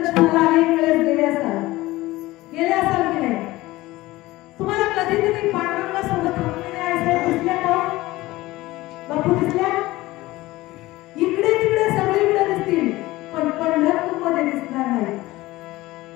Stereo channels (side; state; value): right; quieter; 18.6 dB